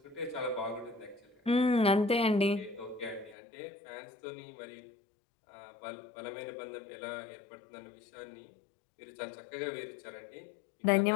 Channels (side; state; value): right; drops out; at 3.4 s